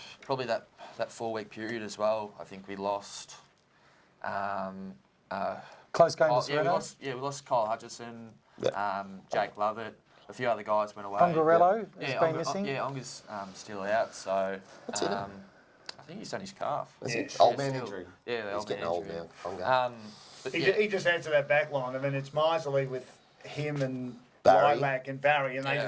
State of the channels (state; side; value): identical; both; correlation 1.00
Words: probably that 4-week period as well. I think we lost. Close game to We Sereno. we lost Kyle Hutchison, Yeah. Jake Lovett, a few other guys went away. Pongarello has Yeah, been missing. Yeah, Onga's still out, so What's he done? I think he's done his calf. Is Yeah. it old Yeah, man still. injury? Yeah, the He's old getting man old injury. now. Ponga. But He, yeah, he just adds to that back line. I mean, it's miserly with him and Barry. Lilac and Barry, and they Yeah.